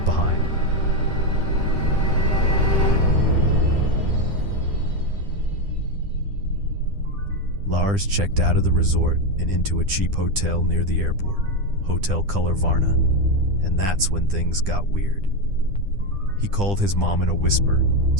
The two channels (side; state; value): left; late; 10 ms